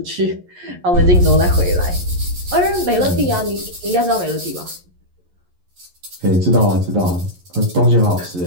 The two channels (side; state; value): left; late; 11 ms